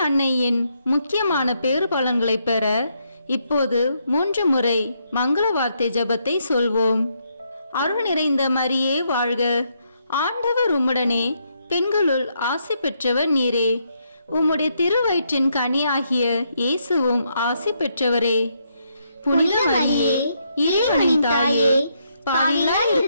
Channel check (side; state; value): both; inverted; correlation -0.76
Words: அன்னையின் முக்கியமான பேறு பலன்களை பெற இப்போது 3 முறை மங்கள வார்த்தை ஜெபத்தை சொல்வோம். அருள் நிறைந்த மரியே வாழ்க. ஆண்டவர் உம்முடனே, பெண்களுள் ஆசி பெற்றவர் நீரே. உம்முடைய திருவயிற்றின் கனியாகிய இயேசுவும் ஆசி பெற்றவரே. புனித மரியே, இறைவனின் தாயே, பாவிகளாய்